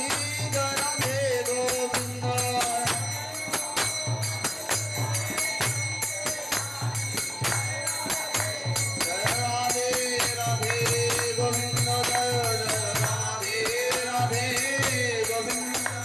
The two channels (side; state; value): both; identical; correlation 1.00